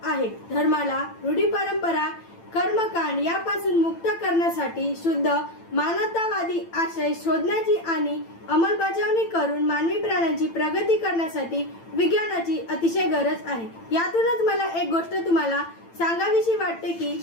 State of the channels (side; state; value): right; late; 8.9 ms